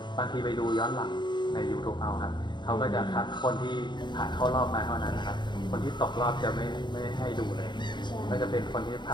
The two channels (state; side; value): late; right; 0.22 ms